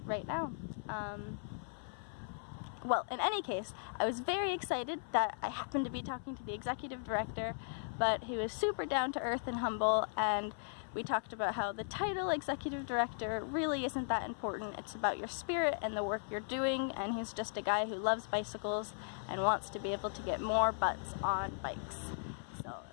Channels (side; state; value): right; silent; 53 dB below the other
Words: right now. Well, in any case, I was very excited that I happened to be talking to the executive director, but he was super down to earth and humble, and we talked about how the title executive director really isn't that important. It's about your spirit and the work you're doing, and he's just a guy who loves bicycles and wants to be able to get more butts on bikes. So